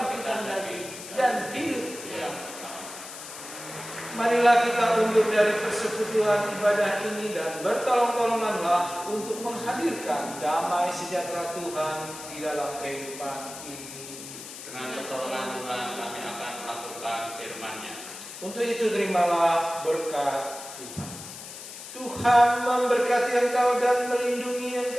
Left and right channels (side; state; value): left; noise; hiss, 12 dB below the sound